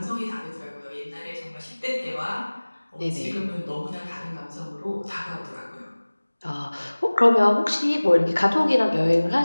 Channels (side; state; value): both; inverted; correlation -1.00